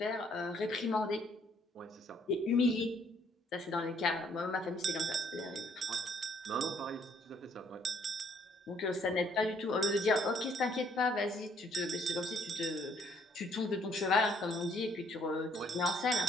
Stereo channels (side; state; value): both; normal; correlation 0.65